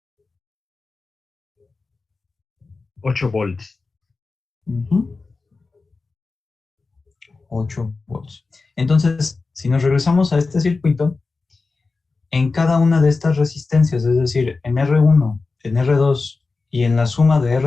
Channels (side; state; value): right; quieter; 4.0 dB